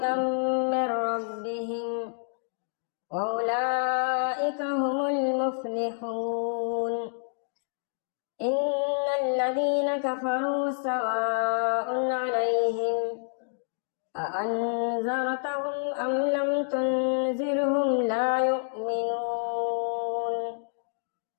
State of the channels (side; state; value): right; silent; digital silence